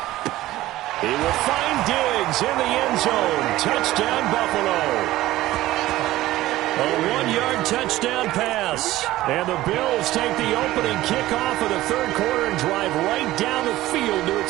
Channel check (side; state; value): left; quieter; 16.1 dB